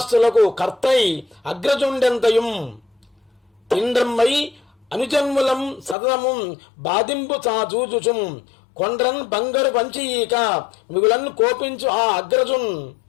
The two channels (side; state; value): right; drops out; at 6.0 s